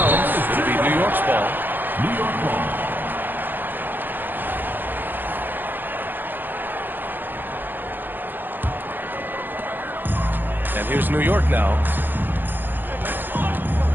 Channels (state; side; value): late; left; 0.092 ms